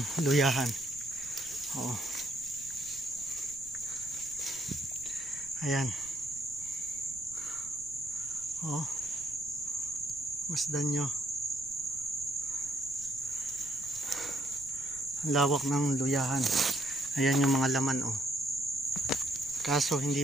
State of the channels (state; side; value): noise; right; rumble, 21 dB below the sound